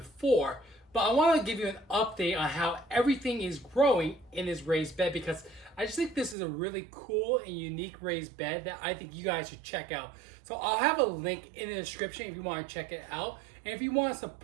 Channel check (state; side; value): drops out; left; at 6.4 s